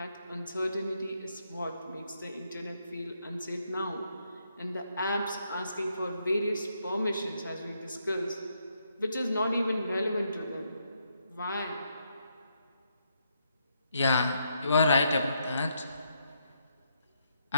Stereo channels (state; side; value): inverted; both; correlation -0.77